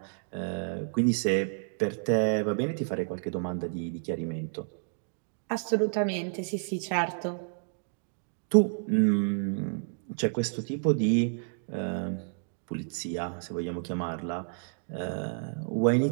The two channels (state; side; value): silent; left; digital silence